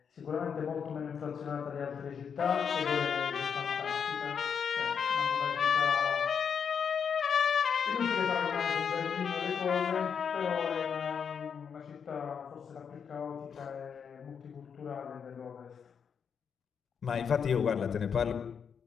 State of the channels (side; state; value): right; quieter; 6.9 dB